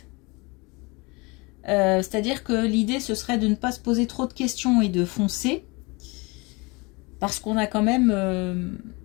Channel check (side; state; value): right; quieter; 26.8 dB